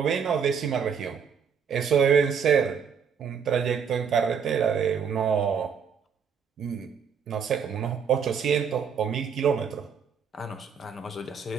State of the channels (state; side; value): quieter; left; 6.8 dB